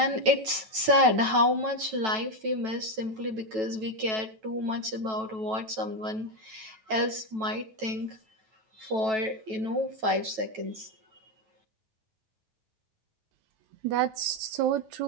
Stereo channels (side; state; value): left; late; 9.2 ms